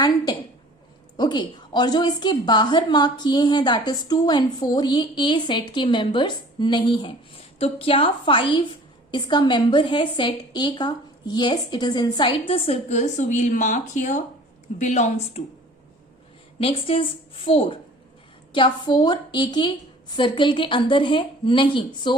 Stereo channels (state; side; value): normal; both; correlation 0.48